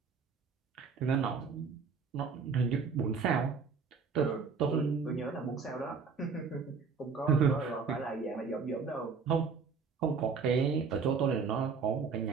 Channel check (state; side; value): quieter; left; 5.4 dB